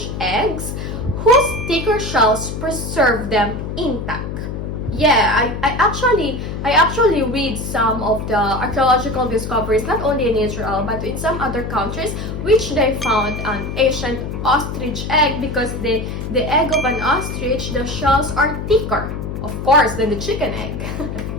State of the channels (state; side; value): noise; left; hum, 6 dB below the sound